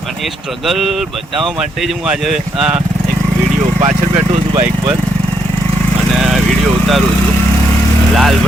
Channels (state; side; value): normal; both; correlation 0.76